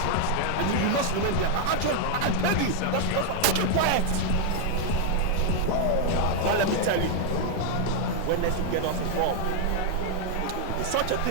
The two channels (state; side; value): different; both; correlation 0.00